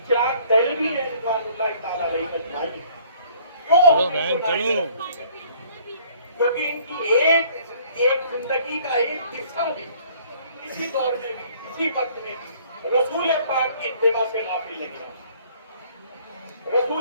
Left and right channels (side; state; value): both; inverted; correlation -0.58